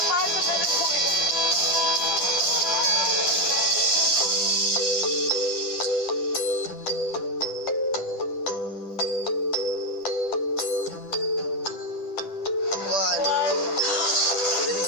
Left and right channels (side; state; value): right; late; 10 ms